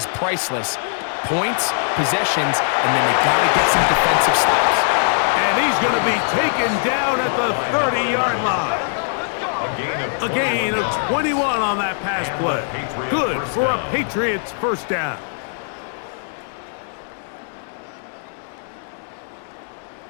priceless. Points, possessions, and then they got to get some defensive stops. And he's going to be taken down at the 30-yard line. A gain of 21 on that pass play. Good for a Patriots 1st down.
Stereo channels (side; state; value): right; silent; digital silence